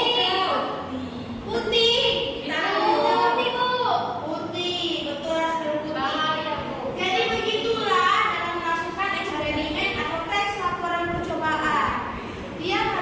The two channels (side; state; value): both; identical; correlation 1.00